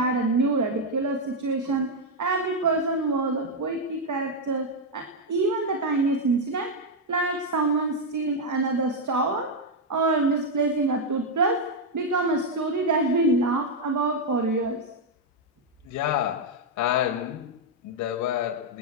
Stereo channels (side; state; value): both; normal; correlation 0.01